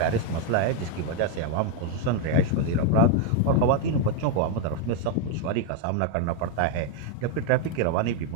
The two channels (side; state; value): both; different; correlation 0.01